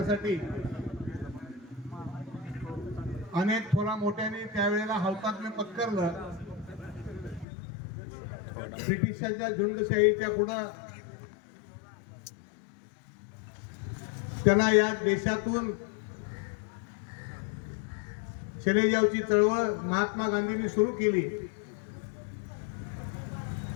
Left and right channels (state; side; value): drops out; right; at 7.5 s